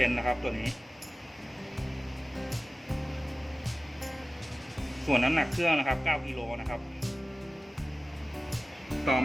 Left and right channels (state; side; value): normal; both; correlation 0.97